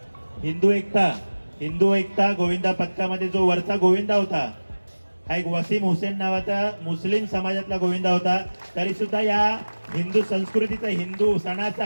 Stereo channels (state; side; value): inverted; both; correlation -1.00